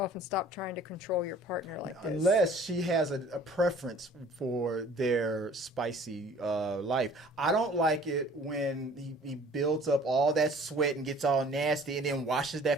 and stop trying to control your partner like this. Unless she has a preference for their spicy life. I don't like it when he builds up all that sweat and gets all nasty and then washes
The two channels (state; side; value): normal; both; correlation 0.51